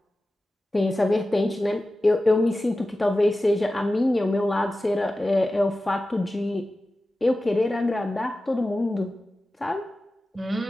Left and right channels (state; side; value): normal; both; correlation 0.95